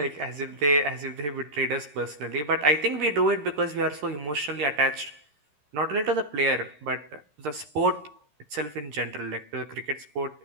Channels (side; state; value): left; late; 13 ms